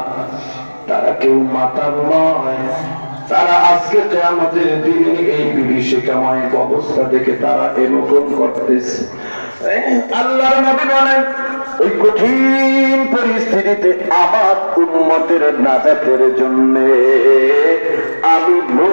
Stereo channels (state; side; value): inverted; both; correlation -1.00